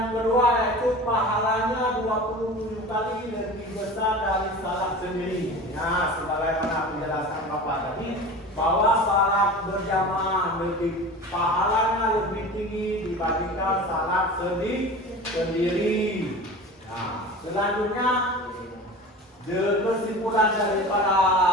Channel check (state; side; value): normal; both; correlation 0.35